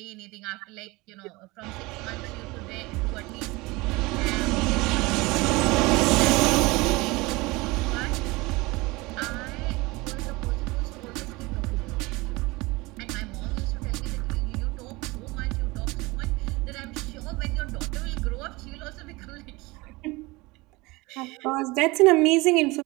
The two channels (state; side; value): quieter; left; 23.0 dB